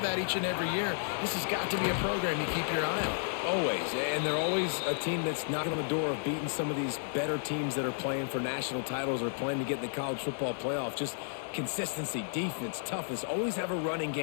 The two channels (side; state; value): right; silent; 55 dB below the other